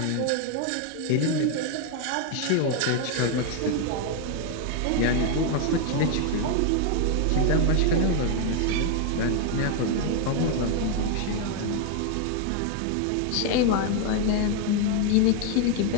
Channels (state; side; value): different; both; correlation 0.00